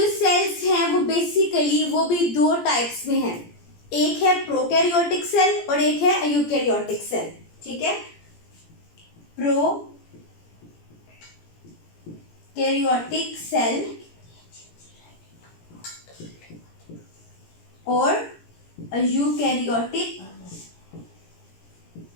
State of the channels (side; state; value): right; late; 17 ms